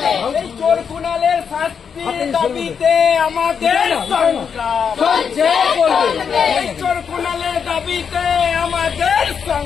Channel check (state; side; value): quieter; right; 6.8 dB